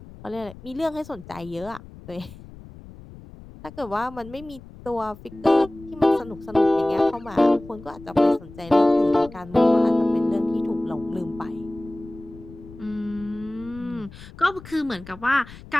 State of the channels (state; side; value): noise; left; rumble, 18 dB below the sound